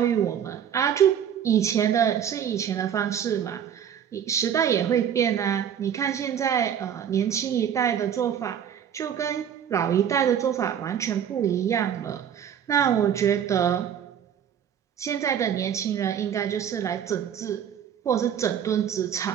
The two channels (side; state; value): left; quieter; 8.8 dB